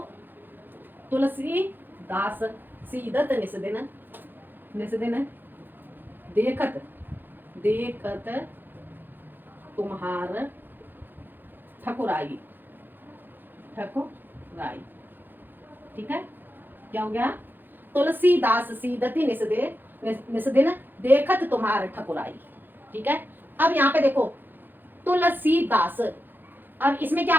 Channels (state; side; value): late; left; 0.092 ms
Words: तुलसीदास सीदत निस दिन, निस दिन देखत देखत तुम्हार ठकुराई, ठकुराई। ठीक है, क्या हो गया? तुलसीदास सीदती निस दिन देखत तुम्हार ठकुराई। ठीक है, अब यहाँ पे देखो तुलसीदास, अब इसमें क्या